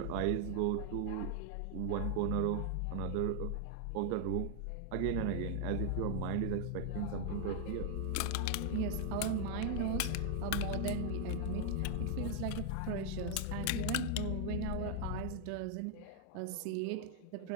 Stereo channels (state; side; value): different; both; correlation 0.00